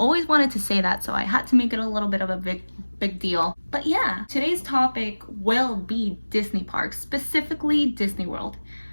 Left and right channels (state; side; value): inverted; both; correlation -1.00